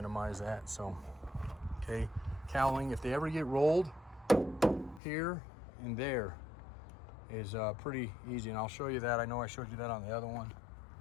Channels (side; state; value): right; drops out; at 5.0 s